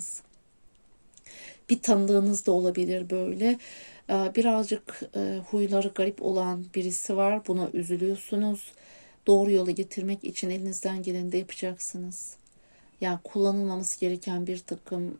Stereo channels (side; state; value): both; inverted; correlation -1.00